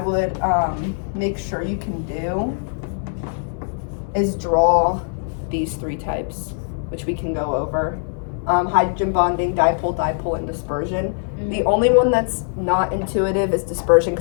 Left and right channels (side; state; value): right; silent; 65 dB below the other